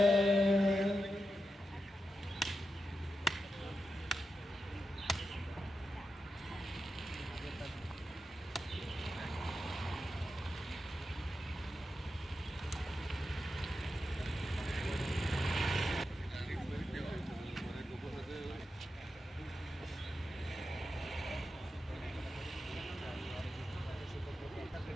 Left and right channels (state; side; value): normal; both; correlation 0.89